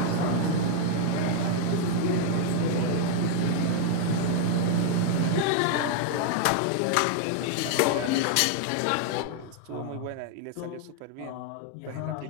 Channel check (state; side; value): different; both; correlation 0.00